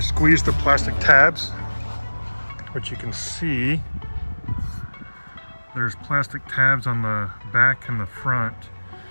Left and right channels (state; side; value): inverted; both; correlation -1.00